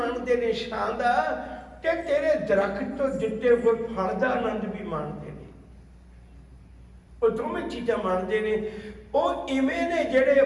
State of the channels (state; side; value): identical; both; correlation 1.00